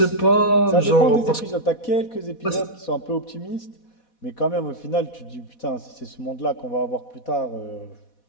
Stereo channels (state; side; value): late; right; 4.1 ms